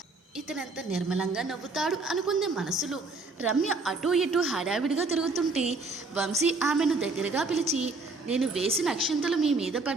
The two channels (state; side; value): quieter; left; 3.6 dB